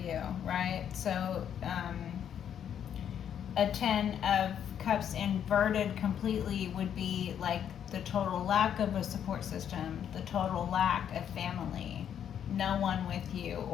right? So a 10 of Cups inverted completely would be like the total lack of a support system, the total lack of family, no one with you,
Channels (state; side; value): quieter; right; 9.1 dB